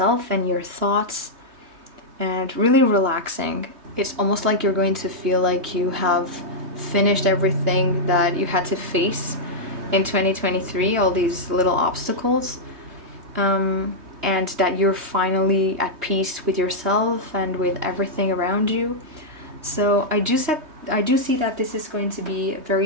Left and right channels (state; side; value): late; left; 3.2 ms